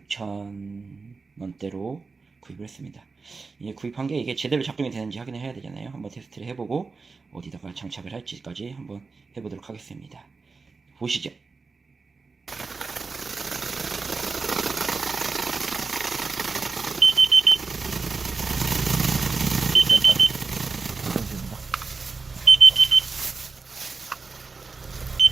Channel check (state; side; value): quieter; left; 4.4 dB